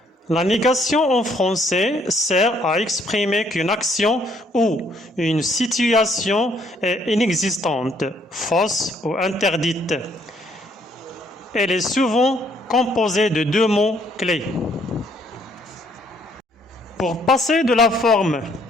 La négation en français sert à exprimer qu'une action ou une situation est inexistante, fausse ou interdite. Elle est souvent composée de deux mots clés. Pour passer de la forme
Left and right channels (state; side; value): normal; both; correlation 0.66